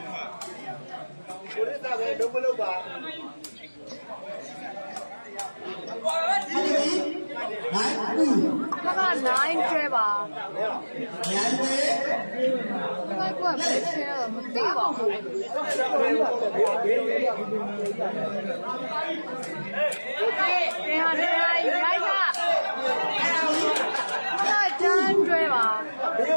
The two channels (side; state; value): both; inverted; correlation -1.00